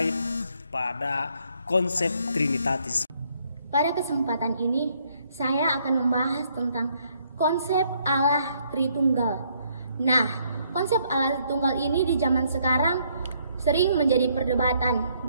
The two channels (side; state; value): both; inverted; correlation -0.70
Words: pada konsep trinitatis. Pada kesempatan ini, saya akan membahas tentang konsep Allah Tritunggal. Nah, konsep Allah Tritunggal ini di zaman sekarang sering menjadi perdebatan.